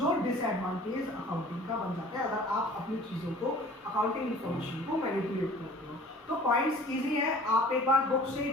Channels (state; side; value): normal; both; correlation 0.47